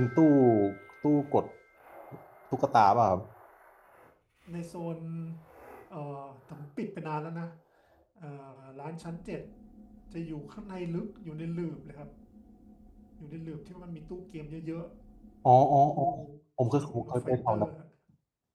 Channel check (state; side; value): identical; both; correlation 1.00